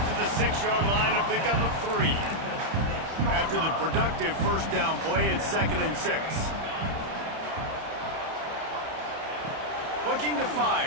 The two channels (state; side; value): late; left; 30 ms